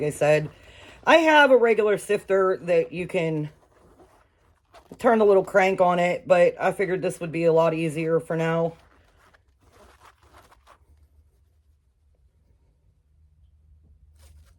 I said, I have a regular sifter that you can turn the little crank on it, but I figured this would be a lot easier for now.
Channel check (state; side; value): identical; both; correlation 1.00